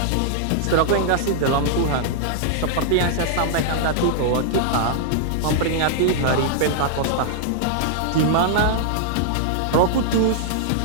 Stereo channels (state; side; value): different; both; correlation -0.01